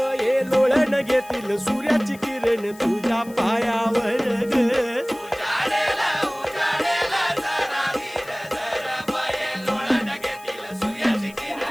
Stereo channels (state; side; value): noise; left; hiss, 22 dB below the sound